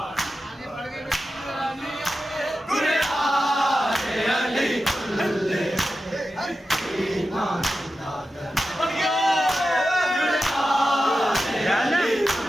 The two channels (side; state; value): both; normal; correlation 0.92